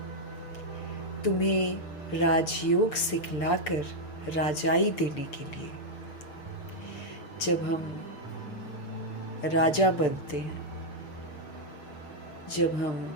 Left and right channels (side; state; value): right; late; 6.8 ms